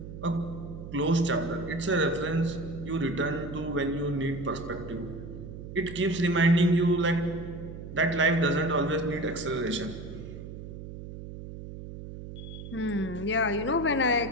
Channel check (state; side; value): noise; right; hum, 11 dB below the sound